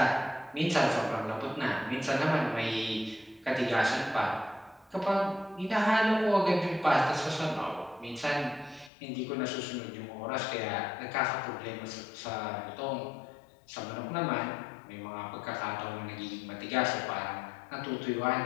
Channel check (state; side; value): drops out; right; at 8.9 s